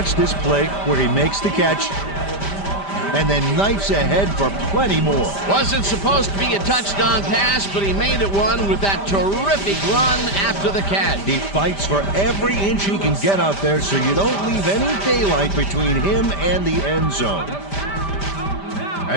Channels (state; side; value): late; right; 5.1 ms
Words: this play where he makes the catch and then knifes ahead for plenty more. Wasn't supposed to be a touchdown pass, but he made it one with that terrific run after the catch. He fights for every inch he can get out there so you don't leave any daylight between him and the end zone.